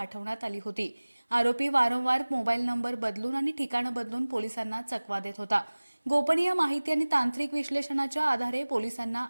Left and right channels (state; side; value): inverted; both; correlation -1.00